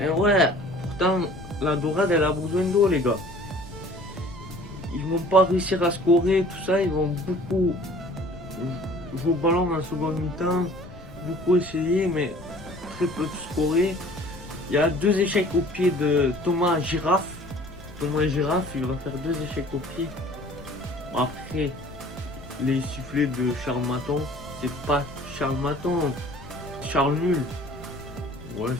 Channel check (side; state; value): left; noise; rumble, 18 dB below the sound